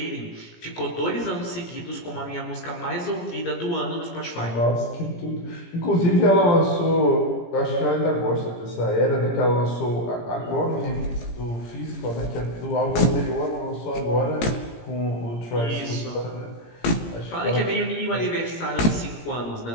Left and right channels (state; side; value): late; right; 17 ms